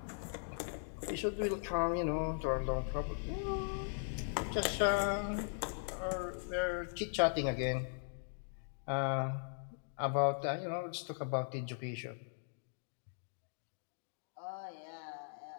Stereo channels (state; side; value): silent; right; digital silence